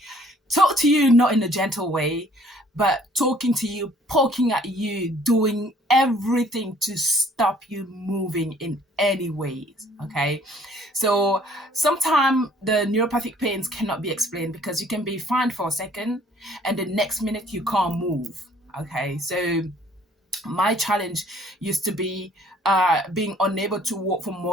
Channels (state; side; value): normal; both; correlation 0.58